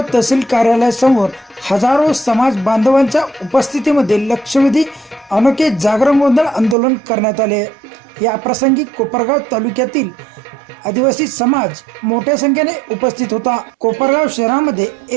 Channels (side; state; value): left; drops out; at 6.8 s